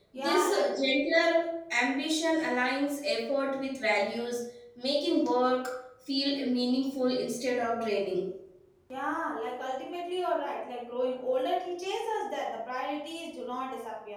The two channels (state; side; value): identical; both; correlation 1.00